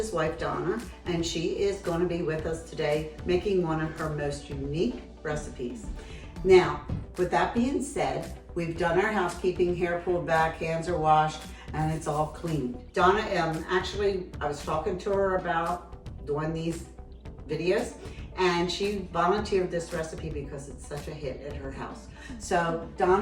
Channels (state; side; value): identical; both; correlation 1.00